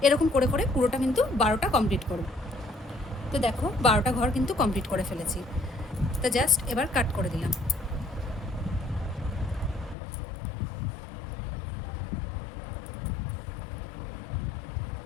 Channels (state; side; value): drops out; right; at 10.0 s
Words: এরকম করে করে পুরোটা কিন্তু 12টা কমপ্লিট করব। তো দেখো, 12টা ঘর কিন্তু কমপ্লিট করে ফেলেছি। তো জাস্ট এবার কাট করে দিলাম।